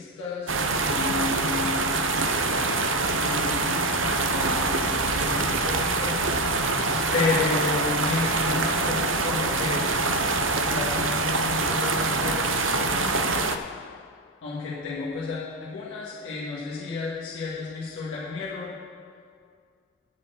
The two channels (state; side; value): normal; both; correlation 0.11